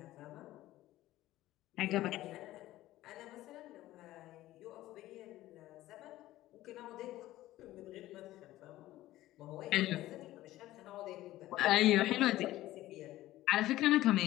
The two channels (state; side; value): quieter; right; 15.6 dB